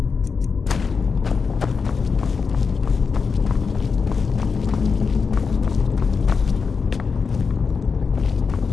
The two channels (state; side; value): quieter; right; 5.3 dB